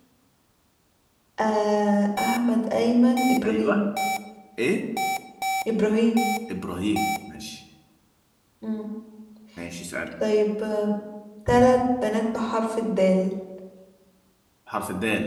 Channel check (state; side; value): identical; both; correlation 1.00